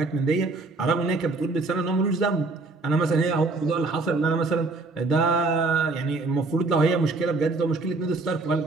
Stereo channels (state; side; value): quieter; left; 3.5 dB